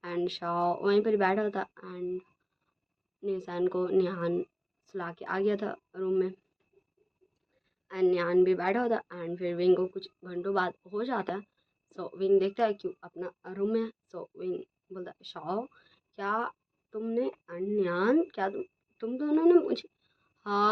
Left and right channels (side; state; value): both; identical; correlation 1.00